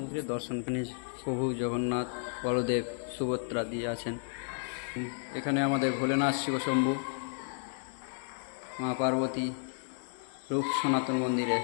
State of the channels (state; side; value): silent; right; digital silence